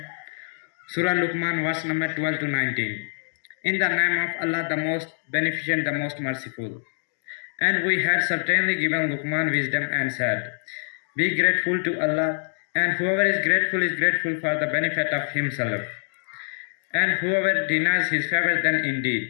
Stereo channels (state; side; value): silent; right; 62 dB below the other